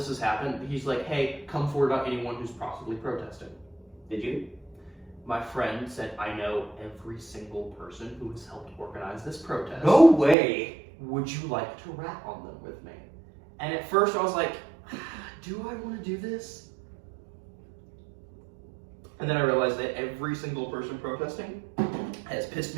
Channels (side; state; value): left; drops out; at 10.4 s